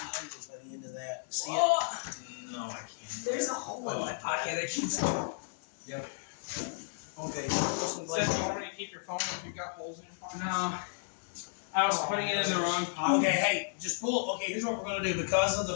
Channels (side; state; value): right; silent; 56 dB below the other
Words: by the end of that. See it? No, I can't. There's a hole in my pocket. I keep. Okay, so put some Says blades. you already keep your phone if you've got holes in your pocket. No. I was putting it in the wrong pocket. Okay, hey, just pull. Okay, here's what we're gonna do. Because of the